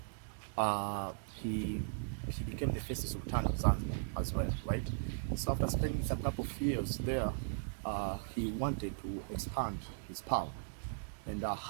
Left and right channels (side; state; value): left; silent; digital silence